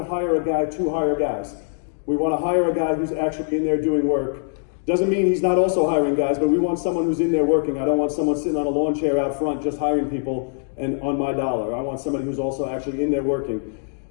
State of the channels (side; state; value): right; silent; digital silence